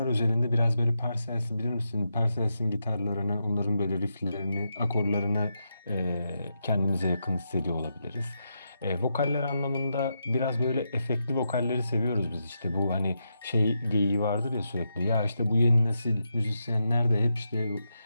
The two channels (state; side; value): inverted; both; correlation -0.84